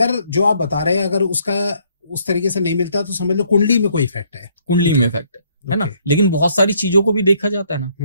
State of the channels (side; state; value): both; inverted; correlation -0.67